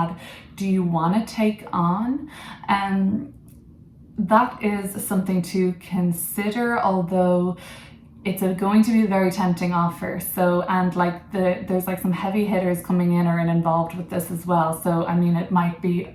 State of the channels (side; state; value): both; identical; correlation 1.00